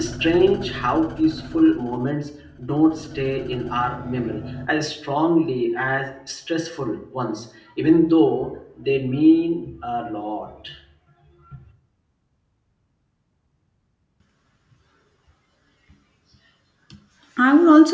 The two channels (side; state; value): both; identical; correlation 1.00